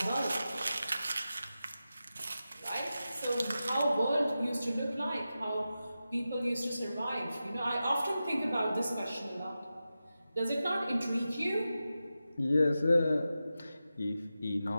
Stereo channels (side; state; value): both; inverted; correlation -0.92